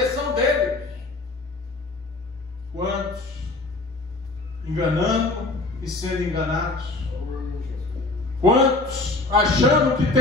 dele. Quantos enganando e sendo enganados? Quantos achando que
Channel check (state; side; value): quieter; right; 3.1 dB